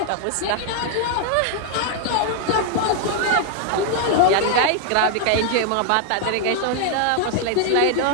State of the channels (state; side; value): different; both; correlation 0.00